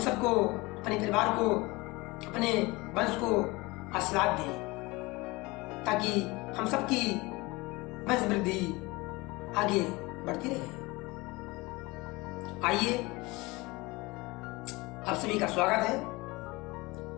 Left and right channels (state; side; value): quieter; right; 23.1 dB